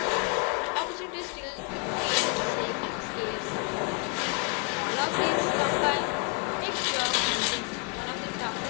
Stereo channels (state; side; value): quieter; right; 29.4 dB